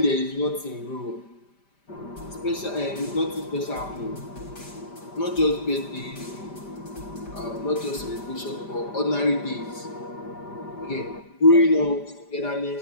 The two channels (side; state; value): right; late; 5.1 ms